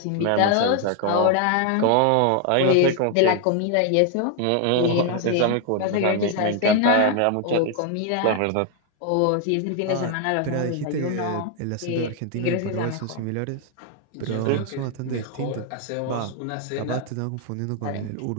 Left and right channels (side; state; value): both; different; correlation 0.00